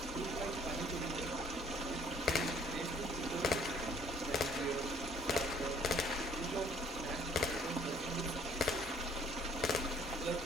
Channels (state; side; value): normal; both; correlation 0.59